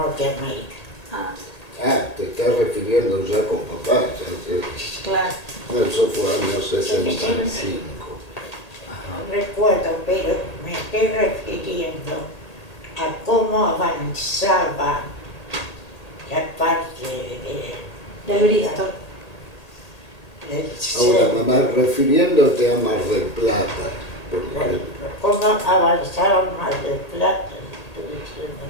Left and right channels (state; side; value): late; right; 1.8 ms